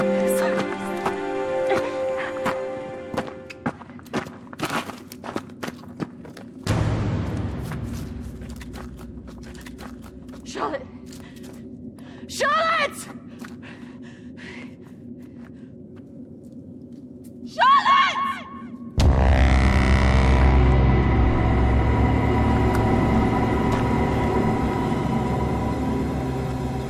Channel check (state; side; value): identical; both; correlation 1.00